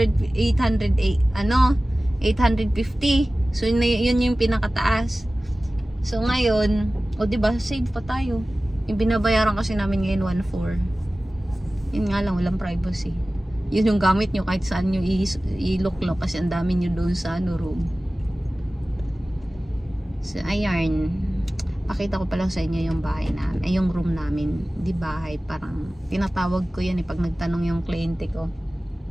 So yun yung pinakataas. So ngayon, o diba, save pa tayo. Yung binabayaran kasi namin ngayon 1.4. Yun nga lang, walang privacy. Yun yung gamit nyo kahit saan nyo iluklok kasi ang dami nyo doon sa ano, room. So ayan, pakita ko pa lang sa inyo yung bahay namin, ay yung room namin. Di bahay, parang tinatawag ko yan pag nagtanong yung kliyente ko.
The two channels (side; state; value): both; normal; correlation 0.97